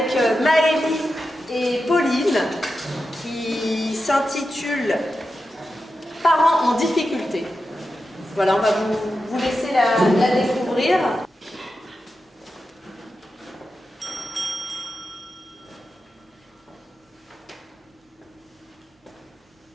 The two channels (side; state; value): both; normal; correlation 0.90